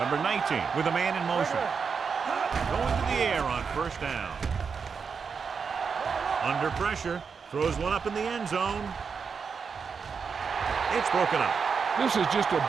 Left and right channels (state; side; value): quieter; left; 5.8 dB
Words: 19 with a man in motion. Going to the air on first down. Under pressure. Throws one up in the end zone. It's broken up. This is just a